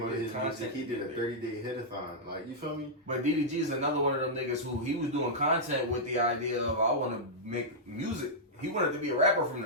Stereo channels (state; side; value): normal; both; correlation -0.09